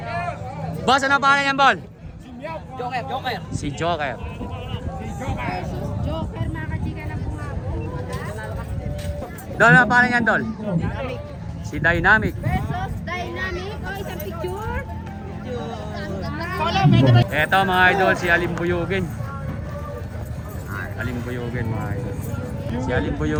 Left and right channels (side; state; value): both; identical; correlation 1.00